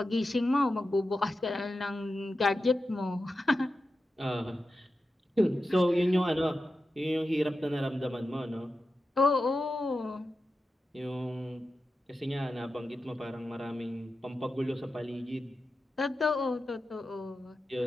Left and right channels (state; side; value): normal; both; correlation 0.91